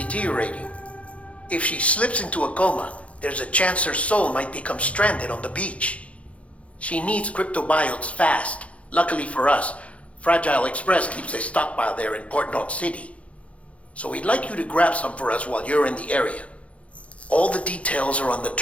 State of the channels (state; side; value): late; right; 0.063 ms